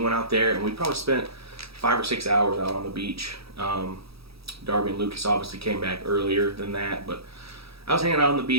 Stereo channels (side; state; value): left; late; 0.77 ms